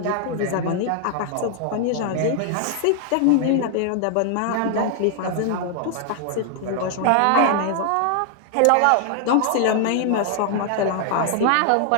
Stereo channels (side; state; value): both; different; correlation 0.00